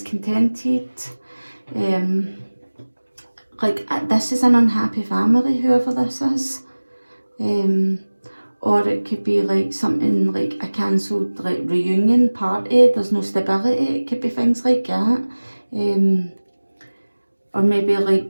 This is an unhappy family, whoever this is. Or it could be like something like a cancelled like reunion party, there's no stability, it could be things like that. Or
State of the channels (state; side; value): inverted; both; correlation -1.00